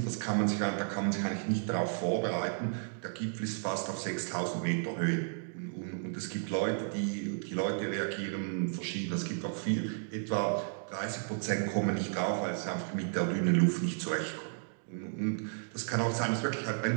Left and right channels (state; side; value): silent; left; digital silence